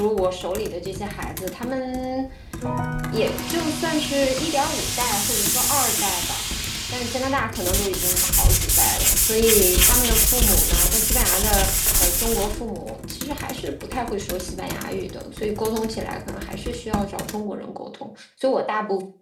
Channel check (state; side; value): identical; both; correlation 1.00